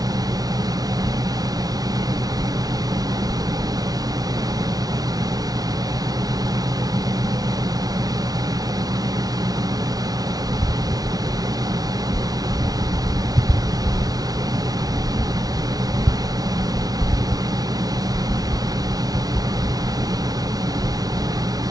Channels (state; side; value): late; left; 0.18 ms